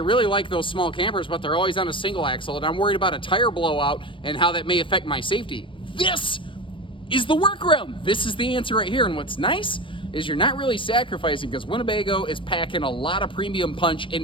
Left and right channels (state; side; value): late; right; 0.25 ms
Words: like those small campers, but they're always on a single axle and I'm worried about a tire blowout and how that may affect my safety, this is the workaround. This is the answer right here. And what's nice is you're not really sacrificing because Winnebago is packing a lot of premium punch